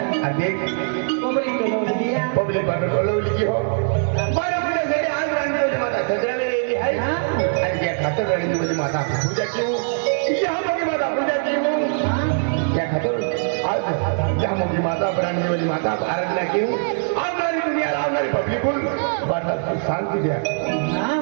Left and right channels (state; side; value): silent; left; digital silence